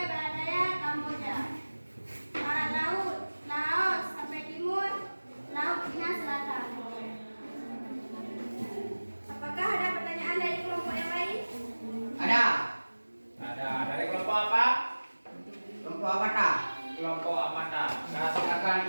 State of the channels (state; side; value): inverted; both; correlation -1.00